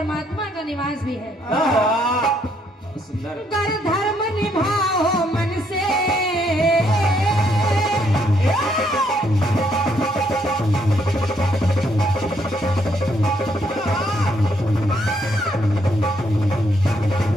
का निवास भी है। वाह, बहुत सुंदर। कर धर्म निभाओ मन से,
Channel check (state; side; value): normal; both; correlation 0.71